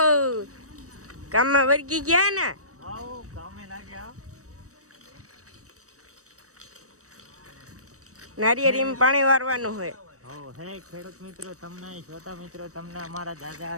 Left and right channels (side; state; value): left; late; 0.65 ms